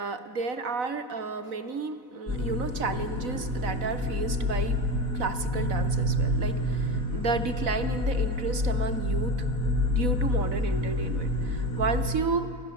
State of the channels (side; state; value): left; late; 4.0 ms